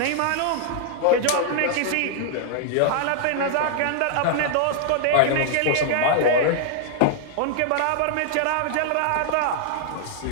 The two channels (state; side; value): different; both; correlation -0.01